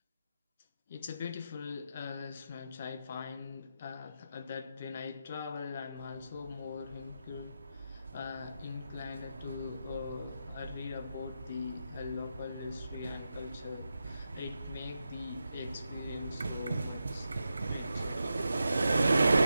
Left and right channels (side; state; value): both; inverted; correlation -0.88